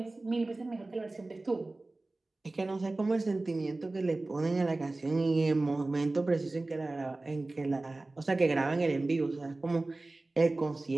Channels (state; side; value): quieter; left; 3.0 dB